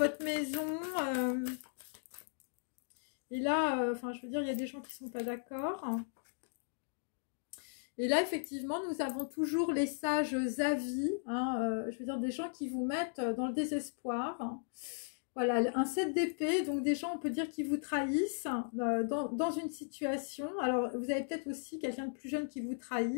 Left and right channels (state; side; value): silent; right; digital silence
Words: maison. Et là, je veux dire, il y a des gens qui ne sont pas d'accord. Et là, effectivement, nous avons toujours les sages avis. Je veux dire, des gens qui vous mettent dans le désespoir. Voilà, un 7 d'épée. Donc, des gens, on peut dire, qui vous trahissent dans une situation. Alors, vous avez peut-être aussi quelqu'un de plus jeune qui vous